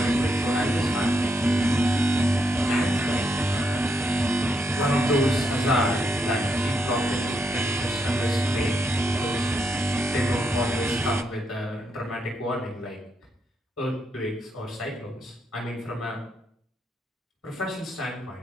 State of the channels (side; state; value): both; normal; correlation 0.79